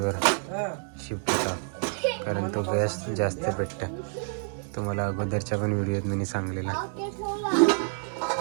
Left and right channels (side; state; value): left; silent; 59 dB below the other